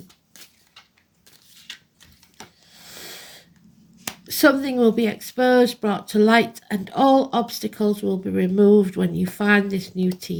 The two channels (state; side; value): identical; both; correlation 1.00